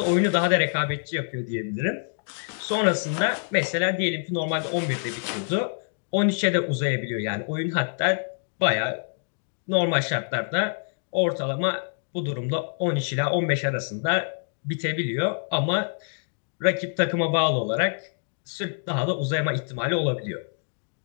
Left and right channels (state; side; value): silent; right; digital silence